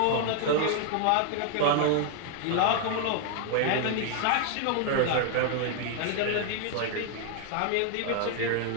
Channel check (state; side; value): different; both; correlation 0.00